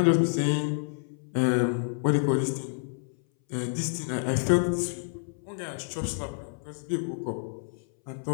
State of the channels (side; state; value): right; silent; 59 dB below the other